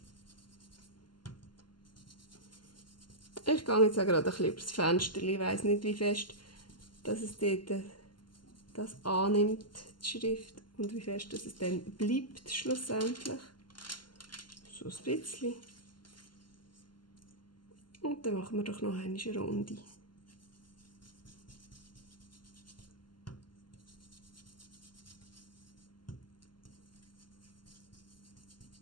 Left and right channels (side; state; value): right; late; 0.71 ms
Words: Ich gehe jetzt auch gerade ein bisschen über das Fenster. Ich weiss nicht, wie fest dass es dort das annimmt, die Schrift, und wie fest dass es dann bleibt schlussendlich. So ein bisschen. Und dann machen wir doch noch eine Runde.